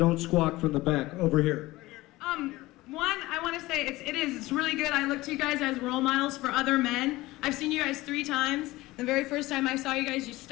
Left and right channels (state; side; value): quieter; right; 19.0 dB